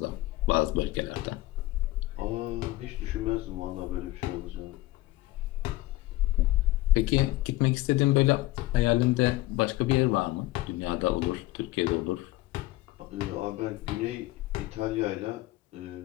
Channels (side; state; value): right; quieter; 18.3 dB